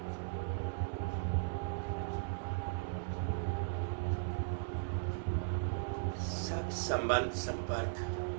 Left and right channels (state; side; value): silent; left; 53 dB below the other